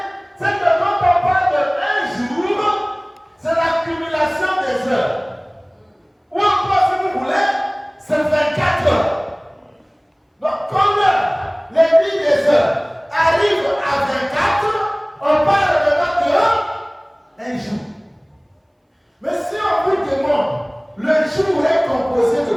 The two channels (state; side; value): identical; both; correlation 1.00